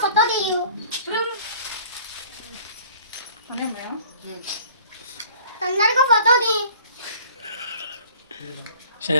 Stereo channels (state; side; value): inverted; both; correlation -0.51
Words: ఫోటో తీయు. తొందరగా ఫోటో తీ. సరే